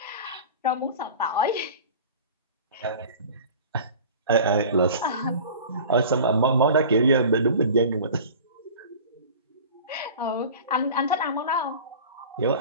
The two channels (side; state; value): both; inverted; correlation -0.39